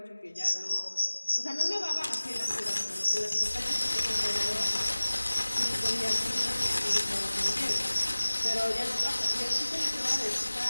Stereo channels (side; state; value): both; inverted; correlation -1.00